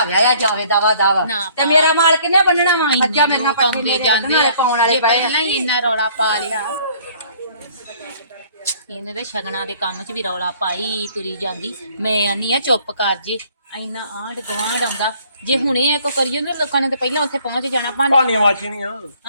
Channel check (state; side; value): inverted; both; correlation -0.58